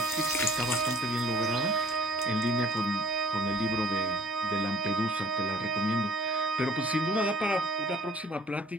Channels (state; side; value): normal; both; correlation 0.54